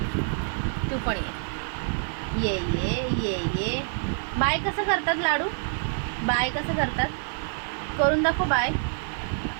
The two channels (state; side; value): silent; left; digital silence